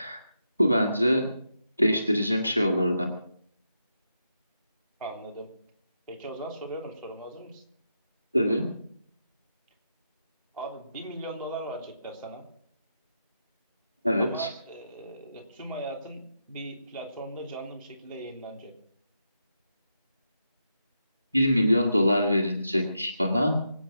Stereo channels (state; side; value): inverted; both; correlation -0.85